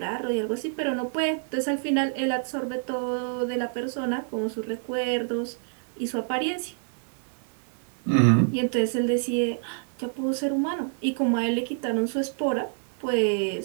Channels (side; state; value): left; silent; 57 dB below the other